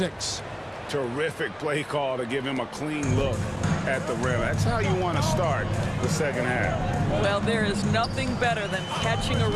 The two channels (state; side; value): identical; both; correlation 1.00